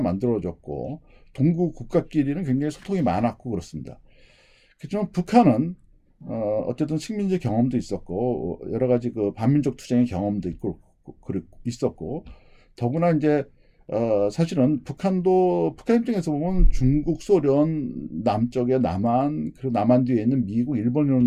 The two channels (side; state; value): both; identical; correlation 1.00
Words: 동구 국가끼리는 굉장히 소통이 많았고 그렇습니다. 그렇지만 북한은 어쨌든 식민지 경험도 있었고 여러 가지 그 반민족 투쟁의 경험도 있었고 더구나 이제 사실은 북한 입장에서 보면 중국, 소련, 남쪽에 남한, 그리고 남한 뒤에 있는 미국, 일본